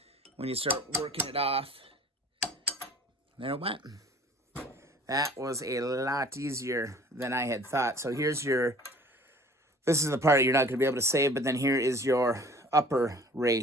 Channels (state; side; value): normal; both; correlation 0.49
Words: when you start working it off. There it went. That was a lot easier than I had thought. So here's your, this is the part you're not going to be able to save, but then here is your upper